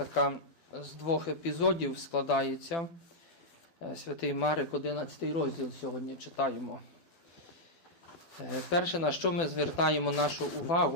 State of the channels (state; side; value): late; right; 12 ms